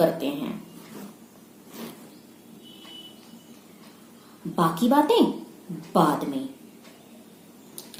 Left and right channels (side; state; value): both; identical; correlation 1.00